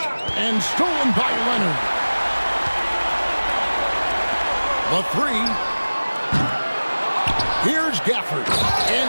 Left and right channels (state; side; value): inverted; both; correlation -1.00